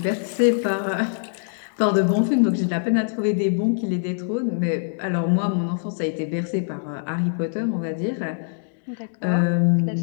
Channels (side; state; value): right; silent; digital silence